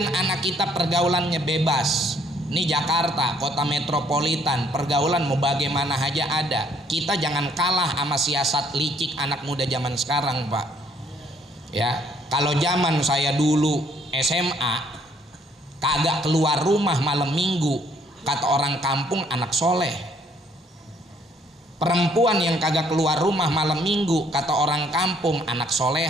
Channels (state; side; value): normal; both; correlation 0.65